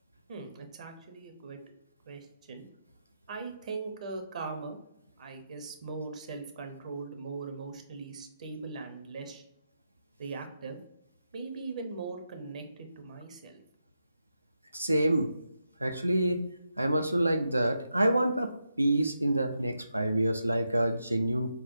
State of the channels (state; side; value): inverted; both; correlation -0.86